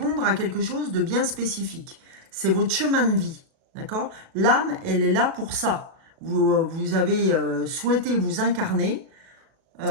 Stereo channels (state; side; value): late; left; 37 ms